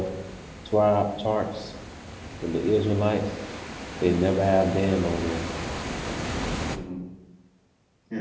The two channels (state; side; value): identical; both; correlation 1.00